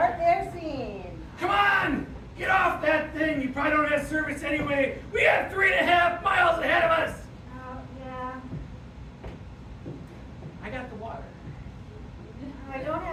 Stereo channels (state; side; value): identical; both; correlation 1.00